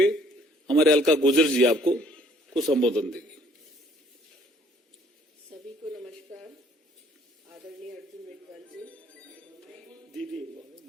हमारे अलका गुर्जर जी आपको कुछ संबोधन देंगे। सभी को नमस्कार। आदरणीय अर्जुन मेघवाल जी, दीदी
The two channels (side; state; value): both; normal; correlation 0.60